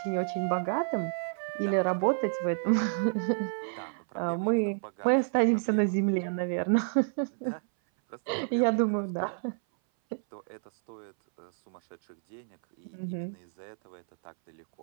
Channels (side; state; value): left; silent; 58 dB below the other